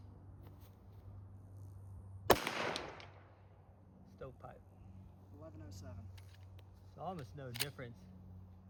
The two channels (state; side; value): identical; both; correlation 1.00